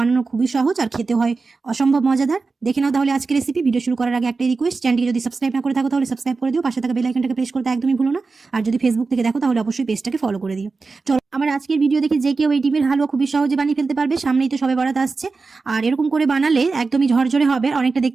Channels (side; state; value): left; quieter; 4.2 dB